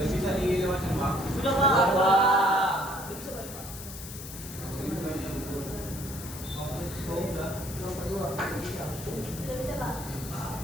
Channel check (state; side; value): noise; left; hiss, 11 dB below the sound